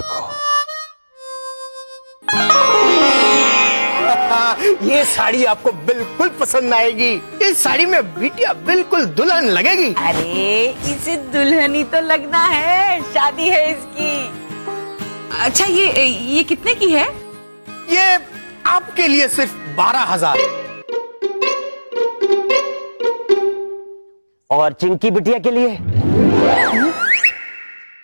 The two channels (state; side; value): inverted; both; correlation -1.00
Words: हो। ये साड़ी आपको बिल्कुल पसंद आएगी। इस साड़ी में बिटिया बिल्कुल दुल्हन लगेगी। अरे इसे दुल्हनी तो लगना है, शादी है इसकी। अच्छा ये कितने की है? ये आपके लिए सिर्फ 12,000। और चिंकी बिटिया के लिए